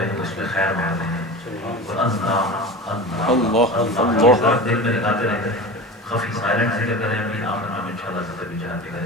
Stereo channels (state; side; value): normal; both; correlation 0.31